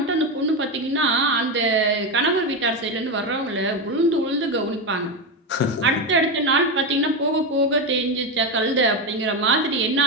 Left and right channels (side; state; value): both; normal; correlation 0.12